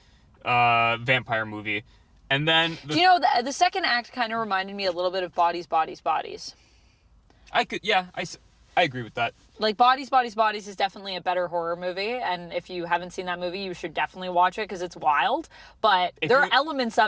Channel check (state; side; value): identical; both; correlation 1.00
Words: vampire movie. And then... the second act kind of reminded me a little bit of Bodies, Bodies, Bodies. I agree with that. Like, Bodies, Bodies, Bodies is definitely a better horror movie. And if you haven't seen that movie, you should definitely watch it because it's wild. But there are elements